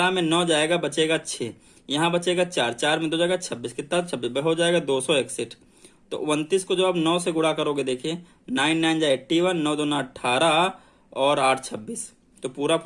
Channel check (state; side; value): identical; both; correlation 1.00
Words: में 9 जाएगा, बचेगा 6, यहाँ बचेगा 4, 4 में 2 जाएगा 26, कितना 26 हो जाएगा 261। तो 29 को जब आप 9 से गुणा करोगे, देखिए 9 9 जा 81, 9 2 18 और 8 26, तो पूरा